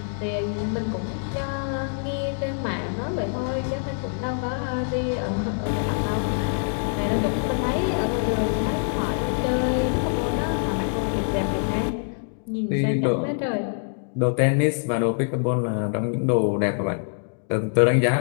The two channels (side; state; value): right; silent; digital silence